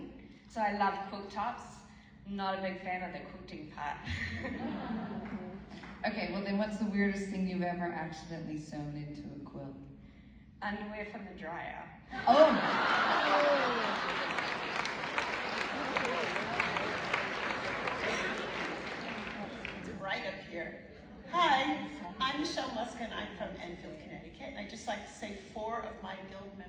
so I love quilt tops. Not a big fan of the quilting part. Okay, well then what's the weirdest thing you've ever accidentally sewn into a quilt? Underwear from the dryer. Oh! Right up here. Hi, I'm Michelle Muskin. I'm from Enfield, Connecticut. And I'd just like to say 4 of my guild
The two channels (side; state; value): both; identical; correlation 1.00